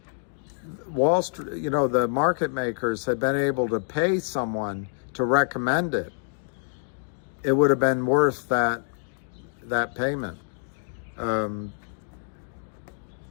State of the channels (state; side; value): silent; right; digital silence